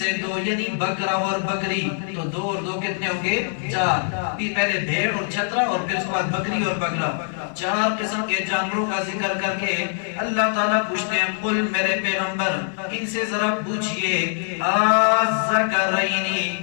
2 یعنی بکرا اور بکری تو 2 اور 2 کتنے ہوں گے 4 پہلے بھیڑ اور چھترا اور پھر اس کے بعد بکری اور بکرا 4 قسم کے جانوروں کا ذکر کر کے اللہ تعالیٰ پوچھتے ہیں قل میرے پیغمبر ان سے ذرا پوچھئے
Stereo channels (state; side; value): silent; right; 63 dB below the other